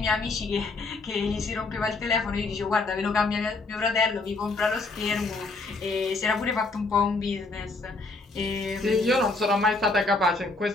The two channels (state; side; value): quieter; right; 3.5 dB